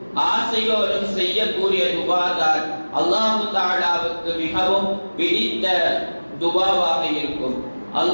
ஆசையோடும் செய்யக்கூடிய துஆதான் அல்லாஹ் தஆலாவுக்கு மிகவும் பிடித்த துஆவாக இருக்கும்.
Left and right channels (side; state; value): both; inverted; correlation -1.00